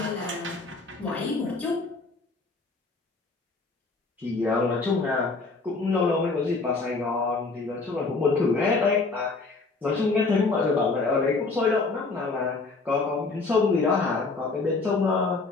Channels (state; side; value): quieter; right; 3.9 dB